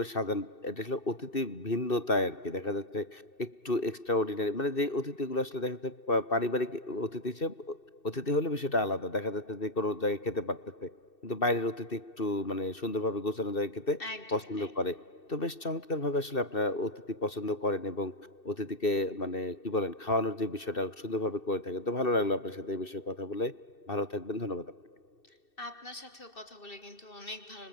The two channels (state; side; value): late; right; 2.7 ms